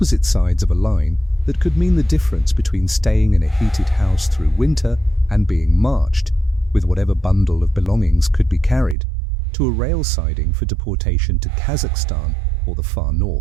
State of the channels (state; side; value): drops out; left; at 9.0 s